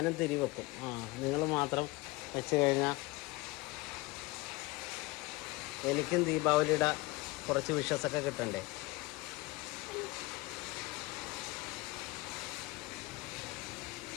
തിരി വെക്കും. നിങ്ങൾ മാത്രം വെച്ച് കഴിഞ്ഞാൽ എനിക്കും ദീപാവലിയുടെ കുറച്ച് വിഷസൊക്കെ കിട്ടണ്ടേ?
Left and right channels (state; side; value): quieter; right; 22.4 dB